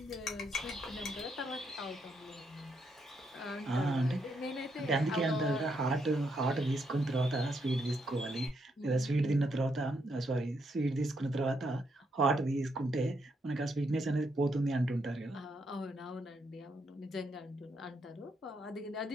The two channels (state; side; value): normal; both; correlation 0.78